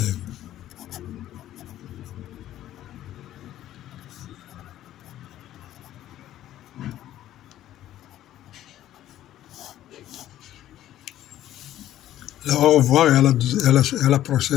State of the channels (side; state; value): right; quieter; 12.9 dB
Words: Au revoir et à la